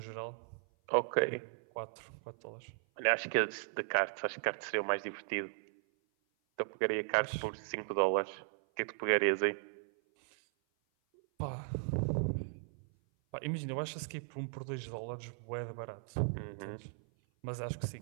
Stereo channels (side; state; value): left; silent; 53 dB below the other